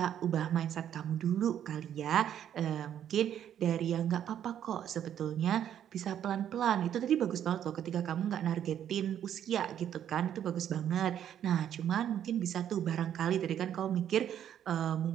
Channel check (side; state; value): left; quieter; 10.0 dB